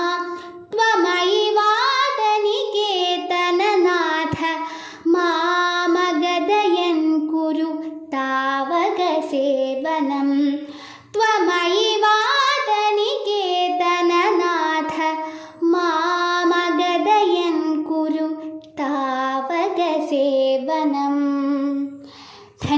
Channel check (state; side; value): identical; both; correlation 1.00